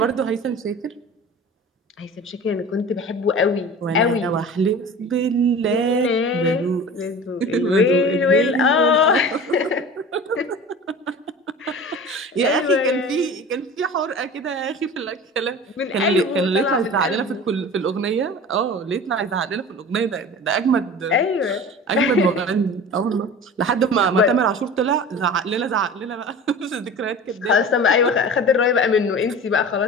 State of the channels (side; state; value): both; normal; correlation 0.37